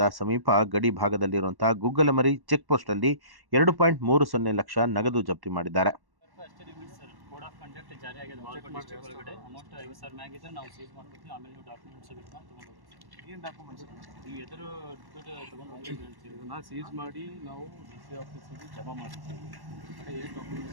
ಸಮೀಪ ಗಡಿ ಭಾಗದಲ್ಲಿರುವಂತಹ ಗುಗ್ಗಲಮರಿ ಚೆಕ್ ಪೋಸ್ಟ್ ಅಲ್ಲಿ 2.30 ಲಕ್ಷ ನಗದು ಜಪ್ತಿ ಮಾಡಿದ್ದಾರೆ. ಕೋಡ್ ಆಫ್ ಕಂಡಕ್ಟ್ ಜಾರಿ ಆಗಿದೆ ಬಾಗಲಕೋಟೆ ಡಿಸ್ಟ್ರಿಕ್ಟ್ ಒಳಗಡೆ. ಅಮೌಂಟ್ 50,000 ಮ್ಯಾಗಿದ್ರೆ ನಾವು ಸೀಸ್ ಮಾಡ್ಕೊತೀವಿ. ಆಮೇಲೆ ನೀವು ಡಾಕ್ಯುಮೆಂಟ್ಸ್ ಬಿಟ್ಕೊಂಡು ತೊಗೊಂಡು ಹೋಗ್ತೀವಿ. ಏನು ಡಾಕ್ಯುಮೆಂಟ್ಸ್ ನೀವು ಎದುರು ದುಡ್ಡು ತೊಗೊಂಡು ಹೋಗ್ತೀವಿ ಹೇಳ್ತೀವಿ. ಇದನ್ನು ಸೀಸ್ ಮಾಡಿ ನಾವು ಡಿ ಸಿ ಆಫೀಸಿಗೆ ಜಮಾ ಮಾಡಿರ್ತೀವಿ. ಏನು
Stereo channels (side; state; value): left; late; 1.1 ms